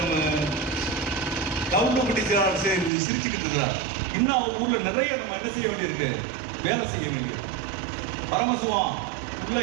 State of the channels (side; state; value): left; drops out; at 2.9 s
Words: நம்ம கவுண்டப்பட்டி செயலாளர் சிரிச்சுக்கிட்டு இருக்கிறார். இன்னும் அவங்க ஊர்ல நிறைய நம்ம என்ன செய்ய வேண்டியிருக்கு? வேலை செய்ய வேண்டியிருக்கு. பரமசிவம் உள்ள